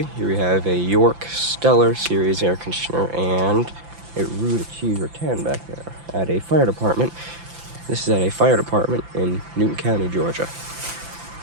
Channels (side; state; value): left; late; 5.9 ms